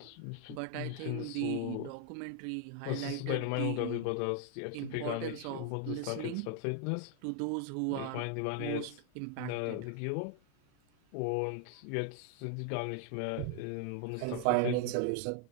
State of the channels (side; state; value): both; different; correlation 0.00